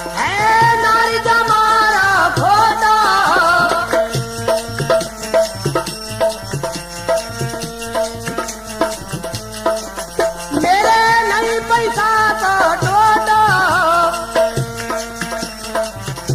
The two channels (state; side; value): identical; both; correlation 1.00